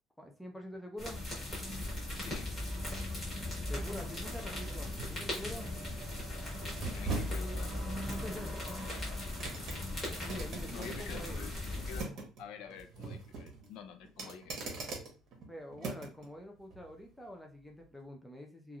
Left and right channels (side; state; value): both; normal; correlation 0.71